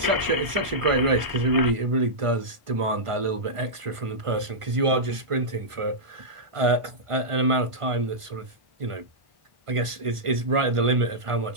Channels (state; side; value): late; left; 1.5 ms